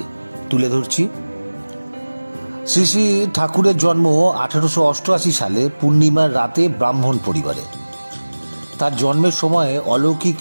তুলে ধরছি। শ্রী শ্রী ঠাকুরের জন্ম 1888 সালে পূর্ণিমার রাতে ব্রাহ্মণ পরিবারে। তার জন্মের সময়ে অলৌকিক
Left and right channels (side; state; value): both; inverted; correlation -1.00